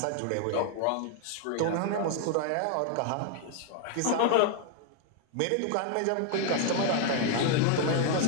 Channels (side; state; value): both; different; correlation 0.00